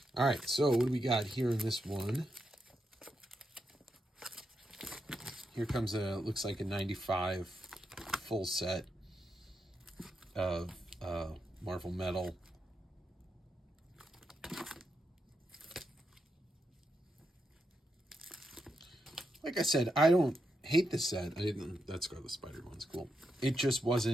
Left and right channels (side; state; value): both; normal; correlation 0.84